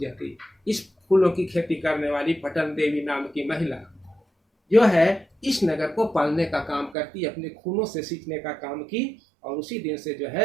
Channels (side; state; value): left; drops out; at 7.0 s